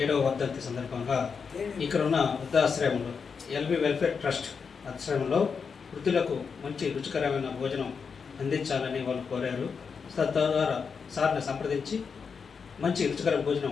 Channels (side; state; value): right; quieter; 5.8 dB